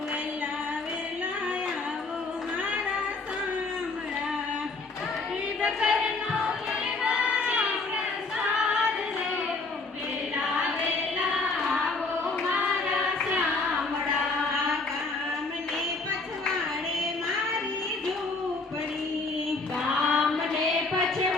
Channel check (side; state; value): right; quieter; 3.7 dB